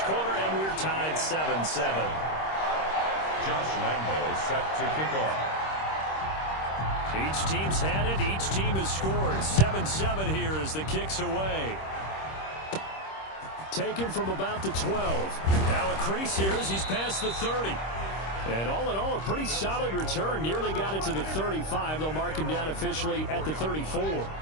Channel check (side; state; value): right; late; 26 ms